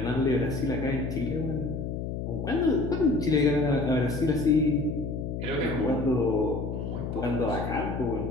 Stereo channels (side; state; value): left; noise; hum, 4 dB below the sound